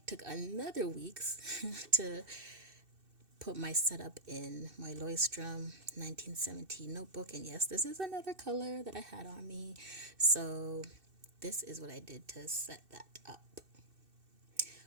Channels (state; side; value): late; left; 2.6 ms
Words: took another weeks to put my setup in my Leuchtturm 1917 notebook. And yes, this is another color that I had on me. So this is what I did to set that up.